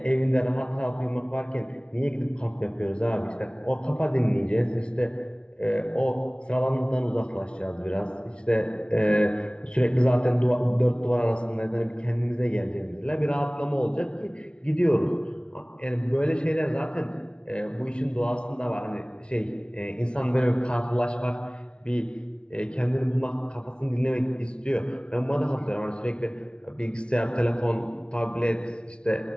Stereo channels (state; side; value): late; right; 0.056 ms